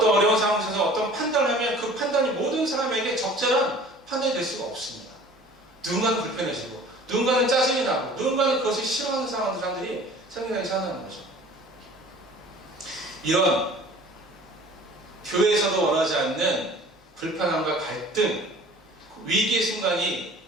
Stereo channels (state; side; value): normal; both; correlation 0.47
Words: 어려운 상황에서 어떤 판단을 하면 그 판단이 모든 사람에게 적절한 판단이 될 수가 없습니다. 누군가는 불편해지고 누군가는 짜증이 나고 누군가는 그것을 싫어하는 사람들이 생겨나기 시작하는 거죠. 이런 교회에서도 원하지 않는 불편함과 갈등, 위기의 순간이